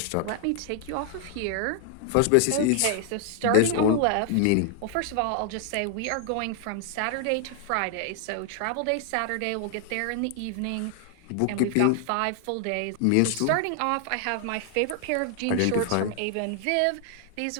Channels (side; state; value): both; different; correlation 0.00